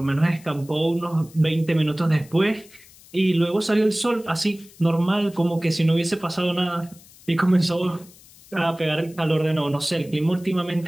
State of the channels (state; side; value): noise; left; hiss, 24 dB below the sound